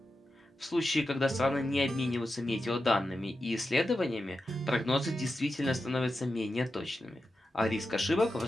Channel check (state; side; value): normal; both; correlation 0.90